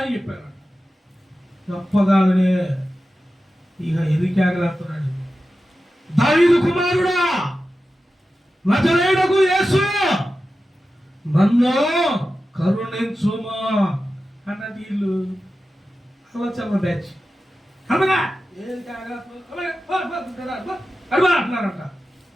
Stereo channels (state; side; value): normal; both; correlation 0.93